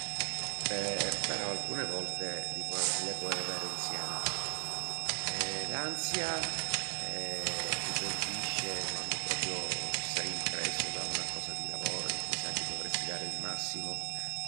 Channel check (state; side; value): silent; left; 53 dB below the other